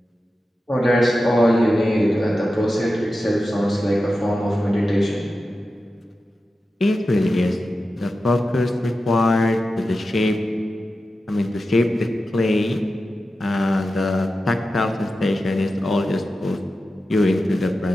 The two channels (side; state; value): both; normal; correlation 0.92